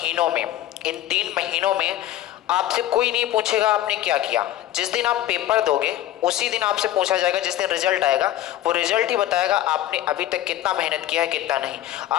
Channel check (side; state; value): right; quieter; 13.5 dB